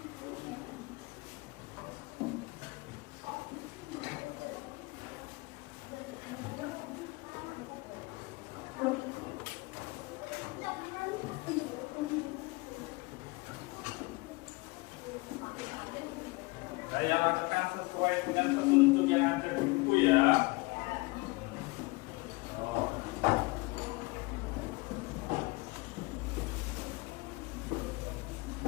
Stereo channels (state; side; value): quieter; right; 24.5 dB